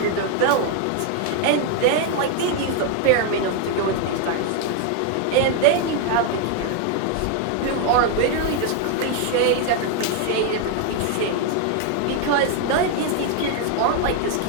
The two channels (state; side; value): different; both; correlation 0.01